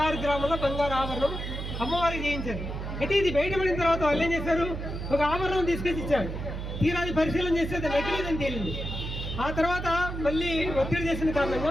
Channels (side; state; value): right; noise; hum, 6 dB below the sound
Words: గ్రాముల బంగారు ఆభరణం అమ్మవారికి చేయించారు. అయితే ఇది బయటపడిన తర్వాత వాళ్ళు ఏం చేశారు, ఒక ఆభరణం తీసుకొచ్చి ఇచ్చారు. తీరాది పరిశీలన చేస్తే అది నకిలీదని తేలింది. ఆ తర్వాత మళ్ళీ ఒత్తిడి చేసిన